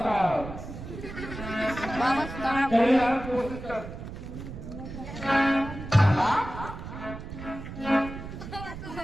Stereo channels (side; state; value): right; noise; rumble, 10 dB below the sound